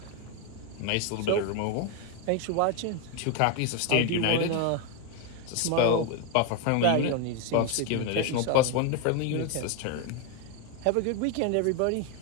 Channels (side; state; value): both; different; correlation 0.01